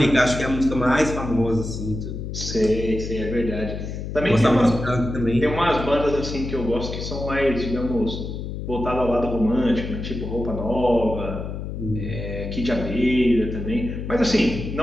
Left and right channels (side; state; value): left; noise; hum, 6 dB below the sound